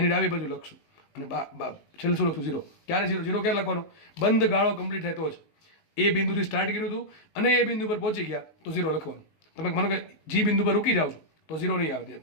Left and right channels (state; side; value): late; right; 19 ms